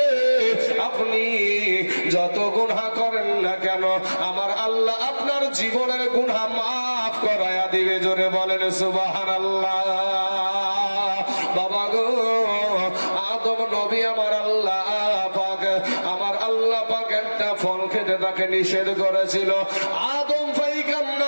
আপনি যত গুনাহ করেন না কেন আমার আল্লাহ আপনার জীবনের গুনাহ মাফ করায়া দিবে। জোরে বলেন সুবহানাল্লাহ। বাবা গো, আদম নবী আমার আল্লাহ পাক একটা ফল খেতে তাকে নিষেধ করেছিল। আদম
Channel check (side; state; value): both; inverted; correlation -1.00